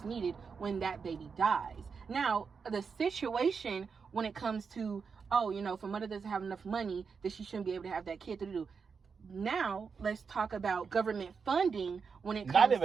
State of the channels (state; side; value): quieter; left; 5.6 dB